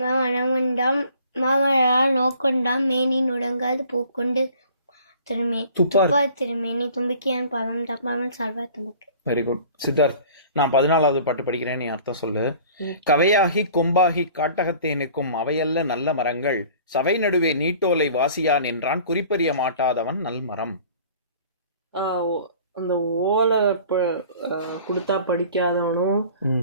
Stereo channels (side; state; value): both; inverted; correlation -0.49